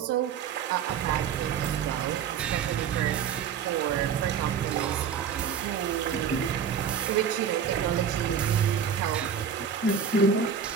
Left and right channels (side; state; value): left; quieter; 7.3 dB